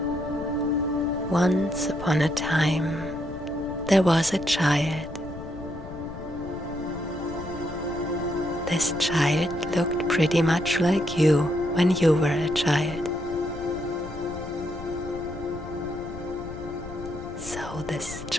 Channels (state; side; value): noise; left; rumble, 12 dB below the sound